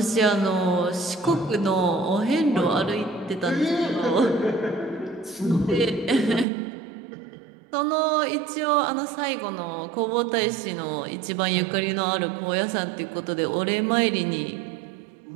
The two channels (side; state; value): left; drops out; at 6.5 s